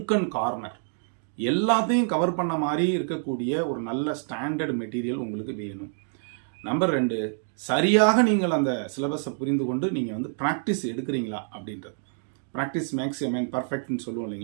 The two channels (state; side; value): silent; left; 60 dB below the other